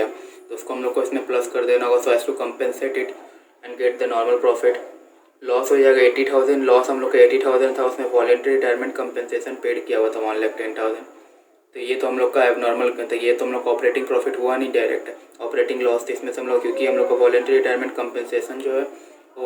तो उसको हम लोग को इसमें प्लस कर देना होगा so as to compensate it and get the normal profit. Loss हो जाएगा 80,000, लॉस हम लोग का 80,000 था, उसमें वॉलेंट्री रिटायरमेंट कंपेंसेशन पेड किया हुआ था 1,10,000। तो ये तो हम लोग का एबनॉर्मल, तो ये तो हम लोग का ऑपरेटिंग प्रॉफिट हुआ नहीं, डायरेक्ट ऑपरेटिंग लॉस थी इसमें से हम लोग, क्योंकि हम लोग का वॉलेंट्री रिटायरमेंट कंपेंसेशन जो है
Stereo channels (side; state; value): both; identical; correlation 1.00